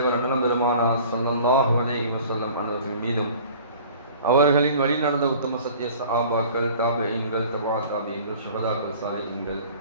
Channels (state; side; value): inverted; both; correlation -0.47